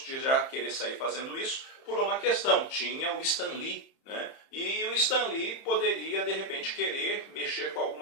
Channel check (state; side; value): late; right; 30 ms